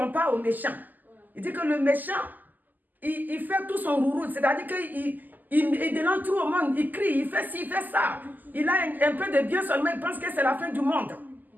au méchant. Il dit que le méchant, il fait tout son rourou, c'est-à-dire qu'il dénonce tout au monde, il crie, il fait ci, il fait ça. Il a un peu de bien seulement, il pense que c'est la fin du monde.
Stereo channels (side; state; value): left; late; 0.085 ms